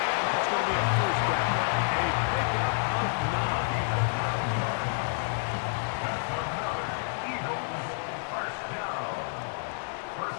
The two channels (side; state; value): right; silent; digital silence